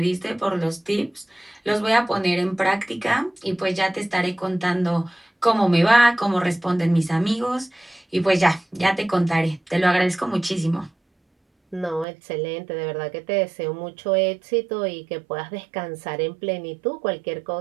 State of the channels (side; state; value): left; drops out; at 12.1 s